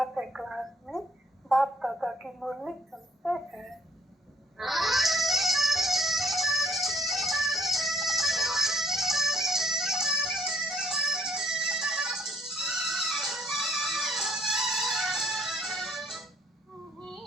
क्लास में बाप दादा की मुरली सुनते हैं।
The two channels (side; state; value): both; normal; correlation 0.65